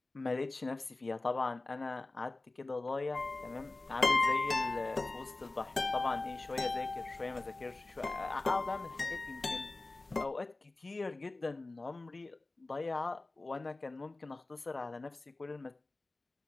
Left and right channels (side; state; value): right; quieter; 3.1 dB